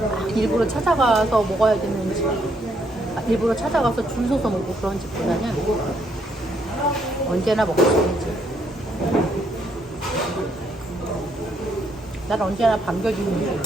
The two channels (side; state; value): both; normal; correlation 0.73